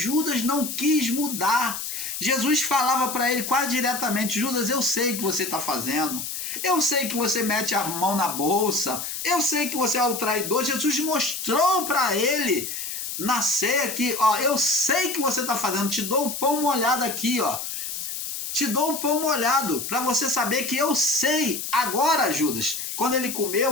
não quis mudar. Jesus falava para ele quase diretamente, Judas, eu sei o que você está fazendo, eu sei que você mete a mão na bolsa, eu sei que você é o traidor. Jesus mostrou para ele na ceia que, eu sei que você está fazendo, te dou o pão molhado aqui, te dou o pão molhado, para você saber que eu sei. Agora, Judas, quando ele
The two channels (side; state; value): left; noise; hiss, 5 dB below the sound